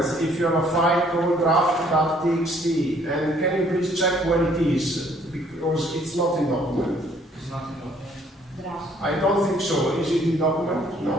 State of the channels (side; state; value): both; normal; correlation 0.62